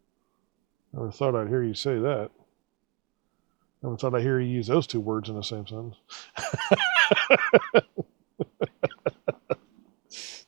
Never thought I'd hear you say that. Never thought I'd hear you use those two words in the same sentence.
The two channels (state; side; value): quieter; left; 30.1 dB